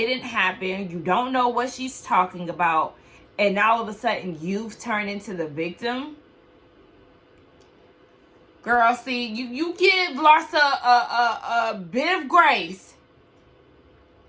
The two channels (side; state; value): both; identical; correlation 1.00